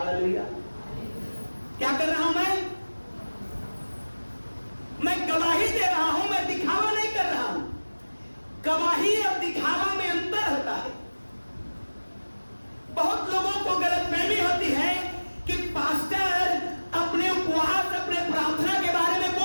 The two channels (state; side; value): inverted; both; correlation -1.00